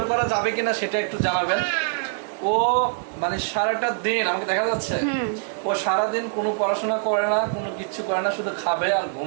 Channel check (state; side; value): silent; left; digital silence